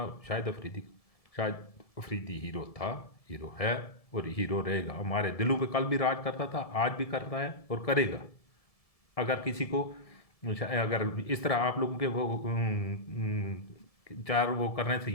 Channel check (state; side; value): late; right; 1.7 ms